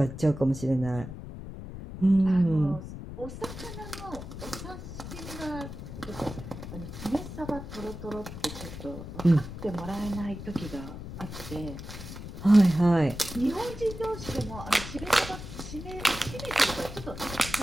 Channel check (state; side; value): noise; left; rumble, 10 dB below the sound